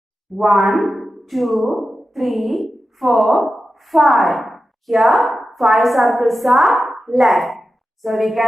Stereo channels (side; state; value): both; normal; correlation 0.92